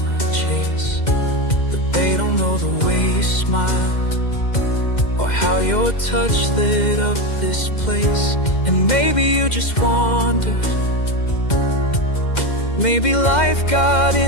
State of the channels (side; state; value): right; late; 2.1 ms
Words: chase, but they don't know the way you smile, or how your touch lit up this place. And maybe you just wandered, maybe life got